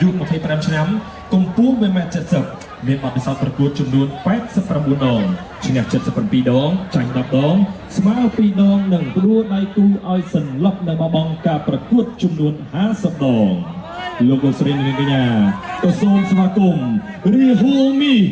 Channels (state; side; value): identical; both; correlation 1.00